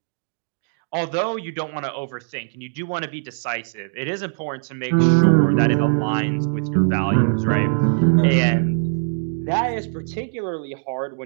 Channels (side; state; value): left; silent; digital silence